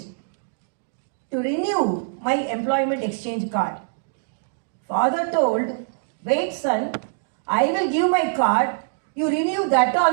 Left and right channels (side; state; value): left; silent; digital silence